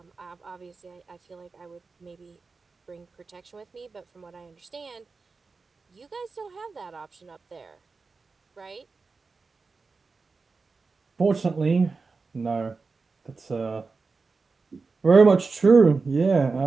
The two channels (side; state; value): left; quieter; 4.3 dB